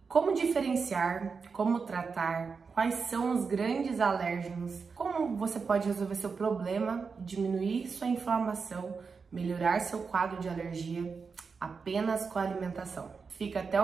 Como diferenciar, como tratar, quais são os grandes alérgenos, como você pode resolver seu problema, diminuir sua inflamação, melhorar seu quadro de alergia apenas com a alimentação. Fica até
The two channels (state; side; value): quieter; left; 5.2 dB